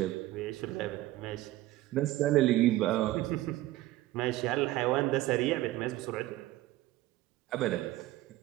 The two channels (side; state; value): left; quieter; 16.4 dB